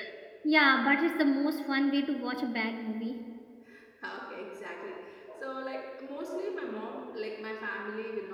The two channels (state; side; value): identical; both; correlation 1.00